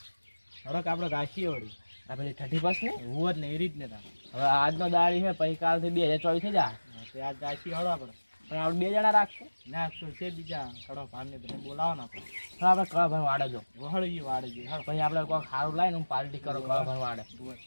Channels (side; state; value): both; inverted; correlation -1.00